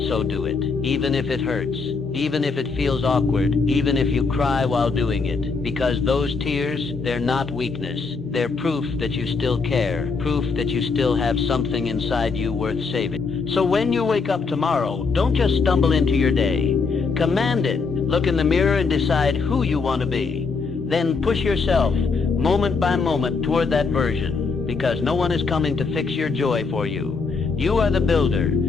So do it. Even if it hurts. Even if it feels awkward. Even if you cry while doing it. Because those tears, they're not weakness. They're proof that you still care. Proof that you still have something inside you worth saving. So when you wake up tomorrow, don't just stumble into your day. Command it. Look in the mirror and decide who you want to be. Then push yourself, moment by moment, toward that version. Because no one is coming to fix your joy for you. You are the builder.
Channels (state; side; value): quieter; right; 4.6 dB